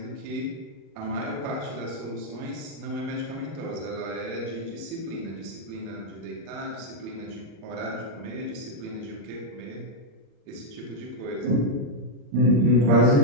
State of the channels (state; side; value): late; left; 35 ms